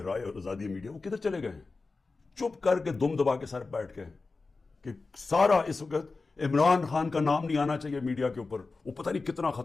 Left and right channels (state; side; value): quieter; right; 3.9 dB